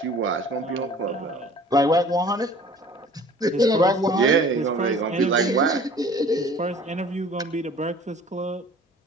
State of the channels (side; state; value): both; normal; correlation 0.48